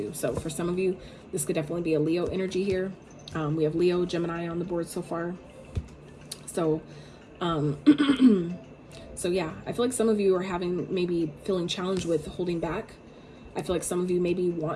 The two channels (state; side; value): identical; both; correlation 1.00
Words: So for some of you, this could definitely be a Leo energy here. We have Leo, Gemini on the board so far. So, so yeah, I feel like some of you are maybe feeling challenged with holding back. I feel like some of you maybe